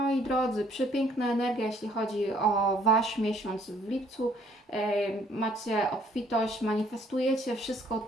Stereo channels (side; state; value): both; normal; correlation 0.62